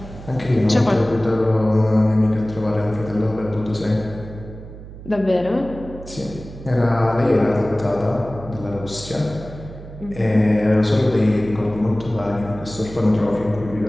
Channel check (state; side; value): noise; right; hum, 14 dB below the sound